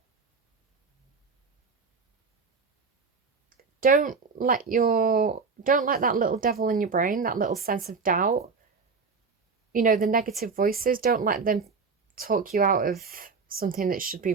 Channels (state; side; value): quieter; left; 4.9 dB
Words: Don't let that little devil in your brain, that little sense of doubt, you know, the negative voices, don't let them talk you out of something that should be